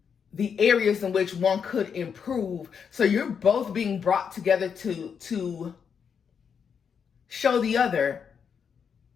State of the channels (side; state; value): right; quieter; 6.8 dB